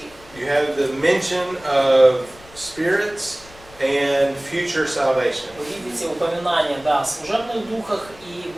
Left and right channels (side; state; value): left; noise; rumble, 23 dB below the sound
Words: you have the mention of spirits and future salvation. вы видите упоминание, да, о служебных духах и